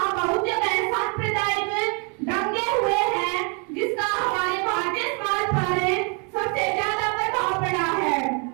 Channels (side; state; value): left; quieter; 36.1 dB